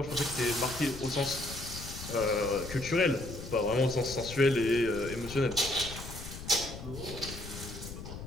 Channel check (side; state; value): left; noise; rumble, 11 dB below the sound